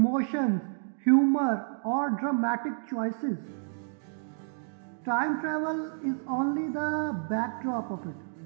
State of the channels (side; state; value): left; silent; digital silence